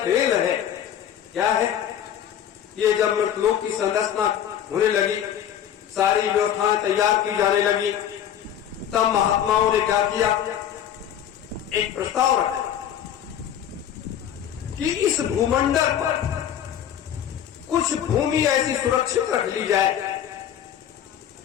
है, क्या है? ये जब मृतलोक की संरचना होने लगी, सारी व्यवस्थाएं तैयार की जाने लगी, तब महात्माओं ने क्या किया? एक प्रस्ताव रखा कि इस भूमंडल पर कुछ भूमि ऐसी सुरक्षित रख ली जाए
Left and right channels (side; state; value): right; quieter; 9.9 dB